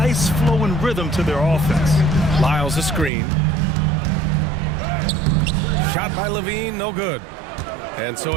flowing rhythm to their offense. Lyles a screen. Shot by Levine, no good. And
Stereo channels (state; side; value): drops out; left; at 3.1 s